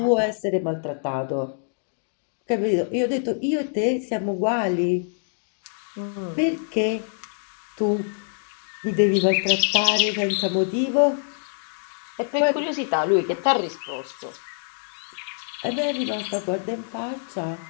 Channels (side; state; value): right; silent; digital silence